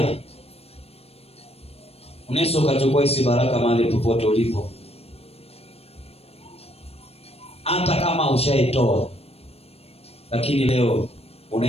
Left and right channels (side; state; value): right; late; 0.29 ms